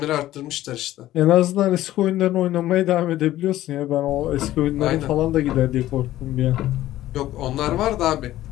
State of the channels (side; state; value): right; quieter; 14.4 dB